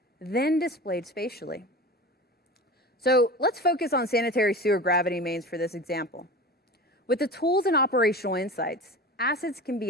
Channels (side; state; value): both; normal; correlation 0.33